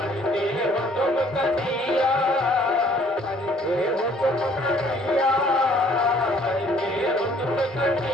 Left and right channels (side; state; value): both; normal; correlation 0.59